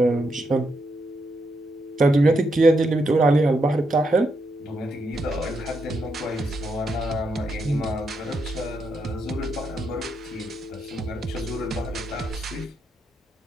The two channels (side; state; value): both; normal; correlation 0.81